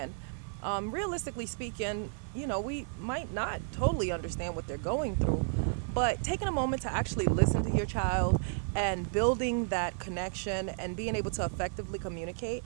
Realistically speaking, we might not totally understand what they're going through, but taking a moment to actually listen to your child and building that connection and being able to effectively communicate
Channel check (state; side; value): silent; left; digital silence